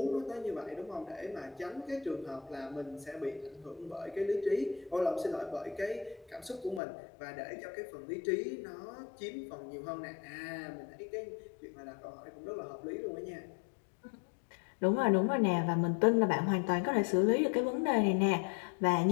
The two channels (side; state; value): right; drops out; at 6.8 s